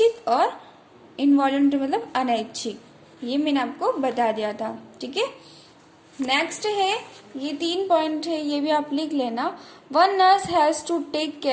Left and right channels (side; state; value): both; identical; correlation 1.00